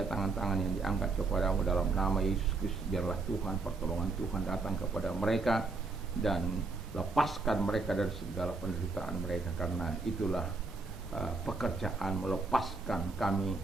tangan-tangan yang diangkat kepada-Mu dalam nama Yesus Kristus. Biarlah Tuhan, pertolongan Tuhan datang kepada mereka dan lepaskan mereka dari segala penderitaan mereka, karena itulah pekerjaan melepaskan kami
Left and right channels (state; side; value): quieter; left; 3.8 dB